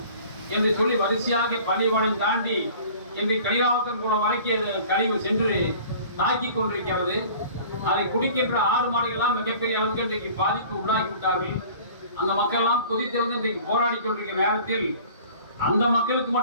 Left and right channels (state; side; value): inverted; both; correlation -0.47